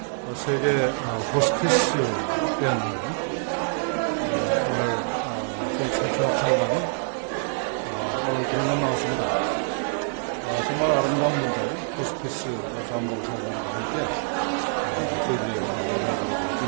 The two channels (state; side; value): silent; left; 55 dB below the other